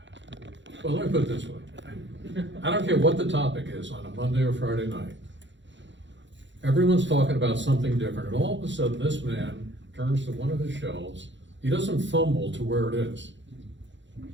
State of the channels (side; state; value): left; late; 0.54 ms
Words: well, let me put it this way. I don't care what the topic is on a Monday or Friday night. Everyone's talking about something different, and all of a sudden this man turns to one of his shelves. He doesn't fumble to where it is.